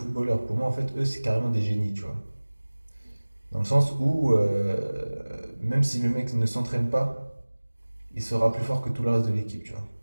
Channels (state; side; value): inverted; both; correlation -1.00